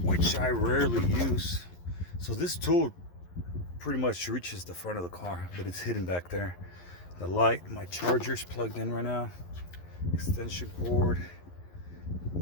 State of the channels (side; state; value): right; late; 11 ms